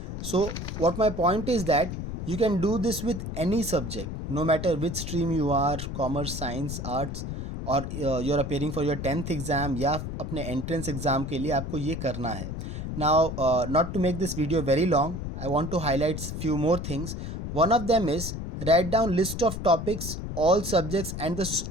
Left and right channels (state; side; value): noise; left; rumble, 6 dB below the sound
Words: So what my point is that you can do this with any subject. no matter which stream you are, commerce, science, arts, और you are appearing for your 10th exam या अपने entrance exam के लिए आपको ये करना है. Now not to make this video very long, I want to highlight few more things. One of them is write down list of topics, all subjects and the